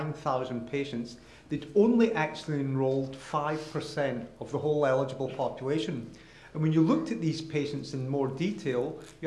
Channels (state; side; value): identical; both; correlation 1.00